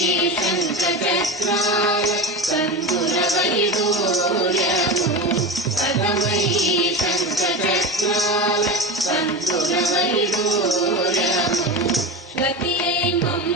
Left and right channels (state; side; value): normal; both; correlation 0.24